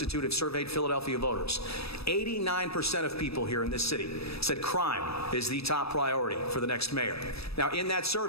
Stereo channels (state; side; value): late; right; 0.78 ms